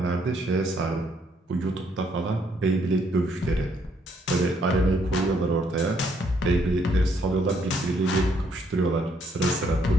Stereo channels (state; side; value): normal; both; correlation 0.70